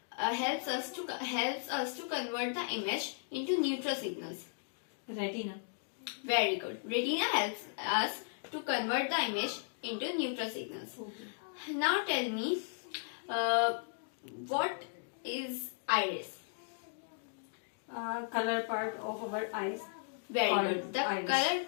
helps us to convert the image into neutral signals. Retina. Very good. Retina helps us to convert the image into neutral signals. Okay. Now tell me, what is iris? Color part of our eyes. Very Colored good. The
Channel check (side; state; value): right; silent; digital silence